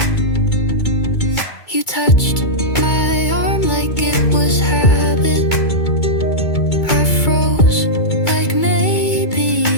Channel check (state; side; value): late; right; 2.3 ms